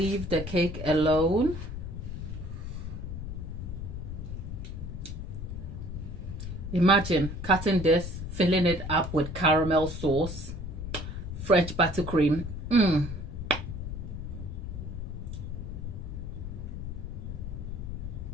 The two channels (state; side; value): noise; left; rumble, 6 dB below the sound